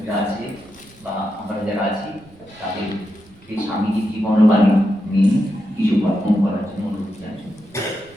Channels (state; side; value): noise; right; rumble, 27 dB below the sound